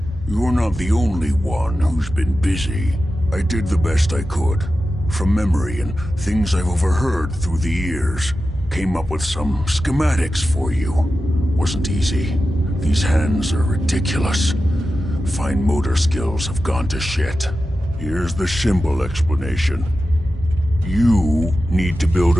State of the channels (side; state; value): both; normal; correlation 0.92